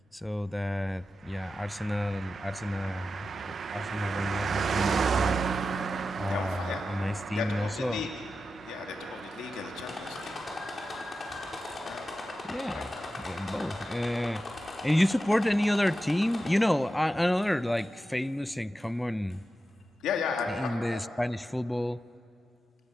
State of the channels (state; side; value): normal; both; correlation 0.91